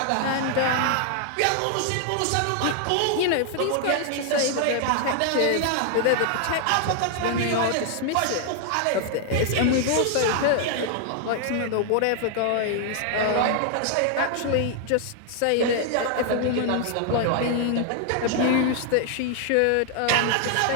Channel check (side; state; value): both; different; correlation 0.00